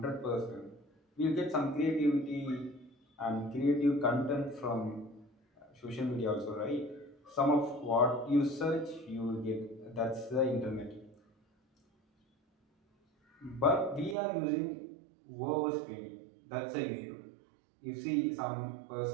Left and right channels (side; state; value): left; drops out; at 14.2 s